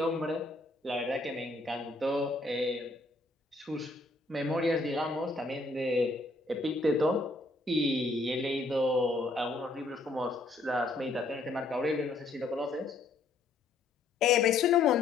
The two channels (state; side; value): quieter; right; 3.2 dB